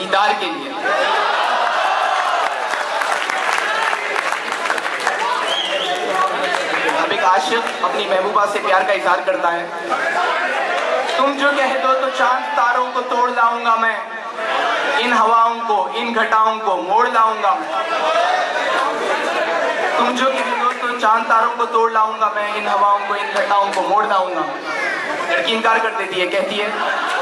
के लिए। अब एक आशिक अपनी महबूबा से प्यार का इजहार करता है। तुम जो कह दो तो चांद तारों को तोड़ लाऊंगा मैं, इन हवाओं को इन घटाओं को मोड़ लाऊंगा। तुम जो कह दो तो चांद तारों को तोड़ लाऊंगा मैं, इन हवाओं को इन घटाओं को मोड़ लाऊंगा। लड़की इनकार कर देती है, कहती है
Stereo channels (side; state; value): both; identical; correlation 1.00